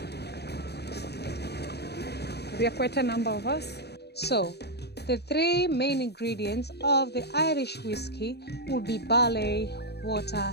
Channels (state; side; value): late; right; 0.48 ms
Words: We are quite a number of us. So, the 3 main ingredients of the Irish whiskey would be barley, water,